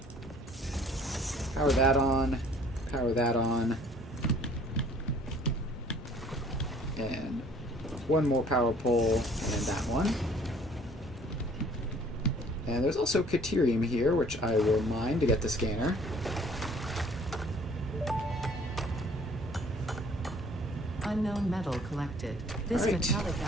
Power that on. Power that on. And one more power pole, and that one. And there's also Caterium here, which I will mine to get the scanner. Unknown metal collected. This Right. metallic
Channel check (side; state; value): both; normal; correlation 0.55